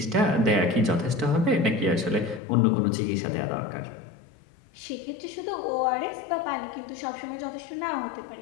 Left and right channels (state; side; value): drops out; right; at 2.4 s